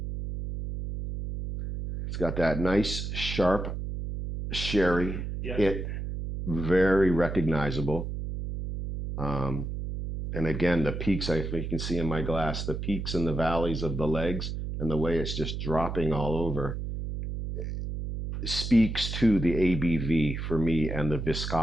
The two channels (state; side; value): noise; right; hum, 5 dB below the sound